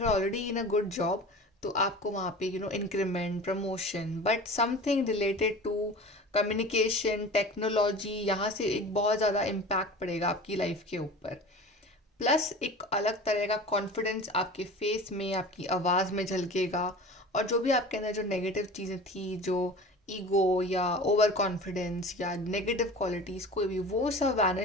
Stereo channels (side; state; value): both; normal; correlation 0.37